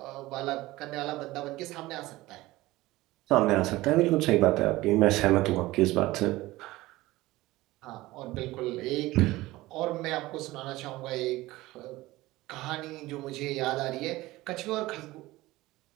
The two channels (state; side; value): quieter; left; 18.6 dB